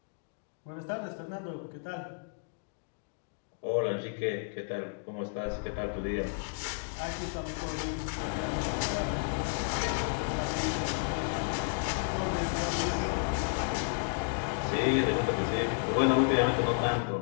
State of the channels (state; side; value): silent; right; digital silence